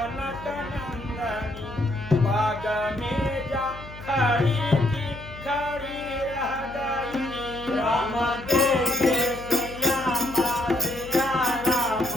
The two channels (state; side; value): noise; left; hum, 15 dB below the sound